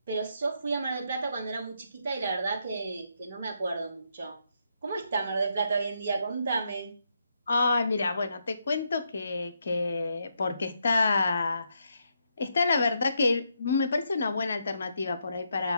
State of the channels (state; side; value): inverted; both; correlation -0.79